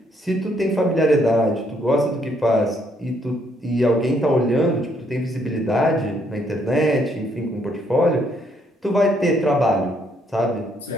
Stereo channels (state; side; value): normal; both; correlation 0.71